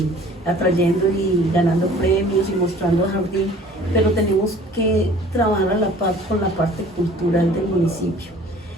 atrayendo y ganando premios y mostrando a Jardín, pero tenemos que trabajar a la par con la parte cultural del municipio.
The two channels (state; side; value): normal; both; correlation 0.50